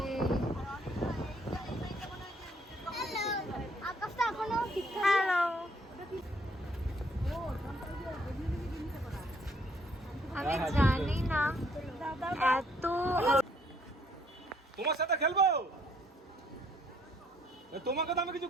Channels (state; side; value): normal; both; correlation 0.66